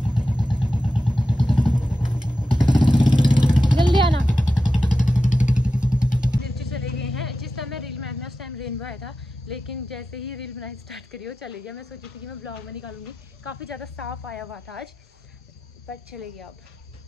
जल्दी आना। नीचे चले गए हैं। जिस टाइम मैं रील बनाई उस टाइम रेनबो आया था, लेकिन जैसे ही रील बनाई स्टार्ट करी वो चले गया। मैं सोची थी कि मैं ब्लॉग में निकालूंगी, काफ़ी ज़्यादा साफ आया हुआ था आज, पर चले गया। अब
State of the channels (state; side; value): normal; both; correlation 0.92